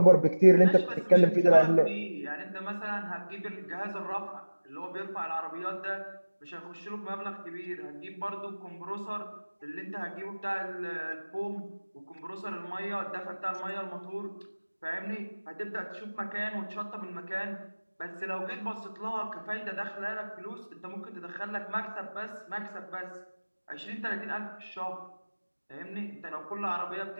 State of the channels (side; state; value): both; inverted; correlation -1.00